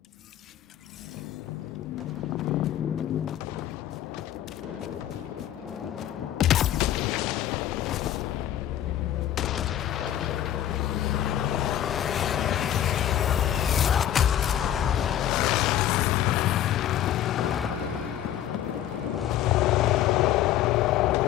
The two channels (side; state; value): right; quieter; 11.5 dB